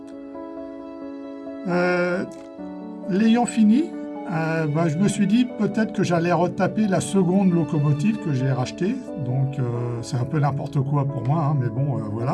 L'ayant fini, je me suis dit peut-être que j'allais retaper la seconde locomotive que j'ai rachetée, donc c'est un peu n'importe quoi pour moi, mais bon,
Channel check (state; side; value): identical; both; correlation 1.00